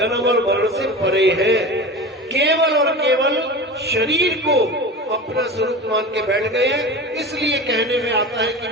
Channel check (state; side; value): normal; both; correlation 0.31